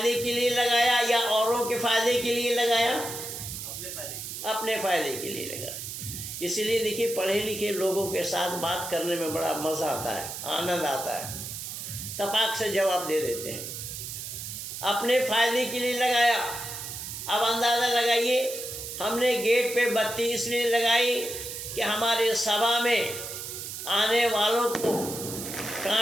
के लिए लगाया या औरों के फायदे के लिए लगाया? अपने फायदे के लिए लगाया। इसीलिए देखिए पढ़े लिखे लोगों के साथ बात करने में बड़ा मज़ा आता है, आनंद आता है, तपाक से जवाब दे देते हैं। अपने फायदे के लिए लगाया। अब अंदाज़ा लगाइए, हमने गेट पे बत्ती इसलिए लगाई कि हमारे सभा में आने वालों को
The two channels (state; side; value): noise; right; hiss, 8 dB below the sound